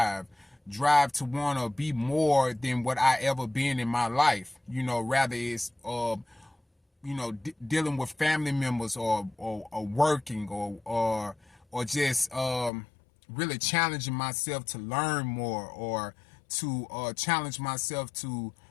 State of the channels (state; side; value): drops out; right; at 12.7 s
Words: to want to be more than what I ever been in my life. Rather it's dealing with family members or working or just really challenging myself to learn more or to challenge myself to